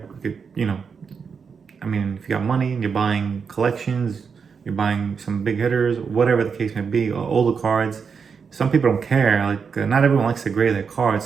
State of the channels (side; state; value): left; quieter; 5.9 dB